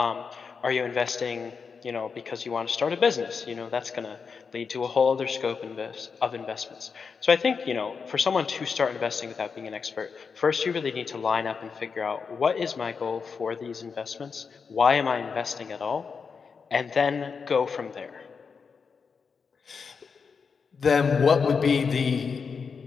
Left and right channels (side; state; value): right; quieter; 5.6 dB